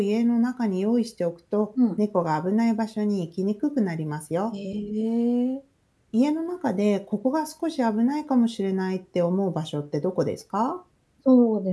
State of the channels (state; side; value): identical; both; correlation 1.00